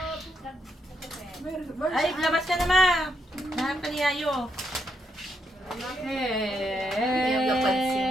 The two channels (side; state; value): both; normal; correlation 0.79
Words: Ay, labas ka na, ma! Nahanap ka ni Yayo. Yung napansin.